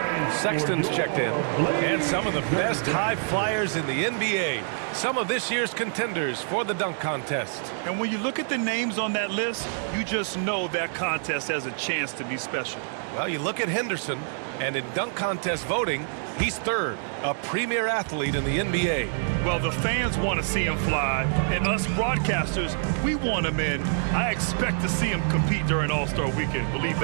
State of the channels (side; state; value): left; silent; 61 dB below the other